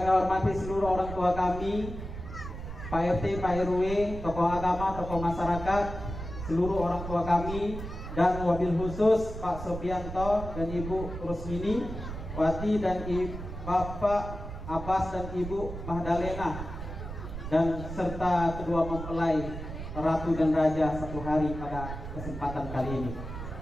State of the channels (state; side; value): noise; right; rumble, 8 dB below the sound